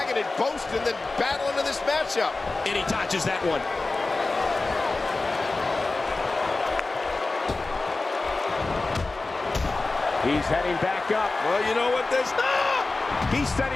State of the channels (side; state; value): right; quieter; 3.4 dB